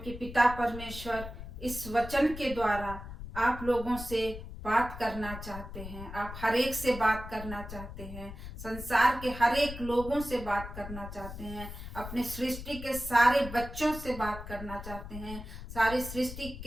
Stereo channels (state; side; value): noise; left; rumble, 10 dB below the sound